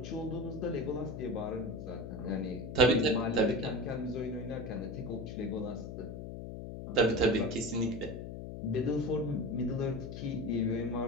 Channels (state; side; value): noise; left; hum, 8 dB below the sound